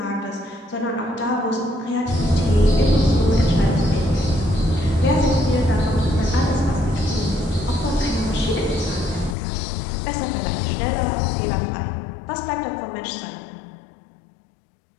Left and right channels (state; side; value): drops out; right; at 9.3 s